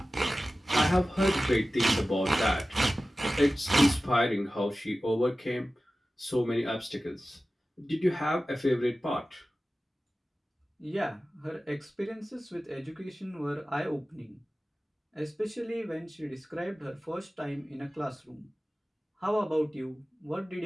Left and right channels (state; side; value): normal; both; correlation 0.96